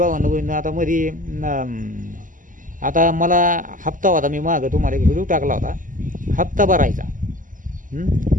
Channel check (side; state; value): left; late; 0.38 ms